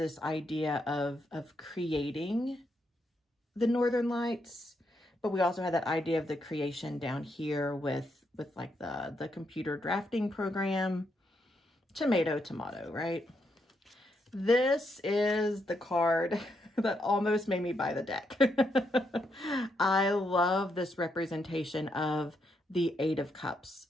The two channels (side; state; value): both; normal; correlation 0.79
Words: idea of creating the Northern Lights, but we also had that idea of the creation down here with like the computer drafting program. Tomato, tomato, right? This is the card that almost made me buy the deck. I love this representation of the Eight of Cups.